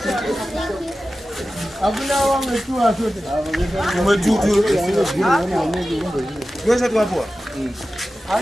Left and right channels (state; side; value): normal; both; correlation 0.94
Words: you. Hakuna wangu tu asote. you. Wewe tu hapo.